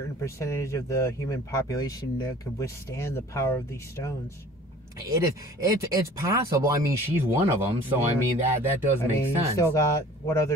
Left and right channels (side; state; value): both; normal; correlation 0.48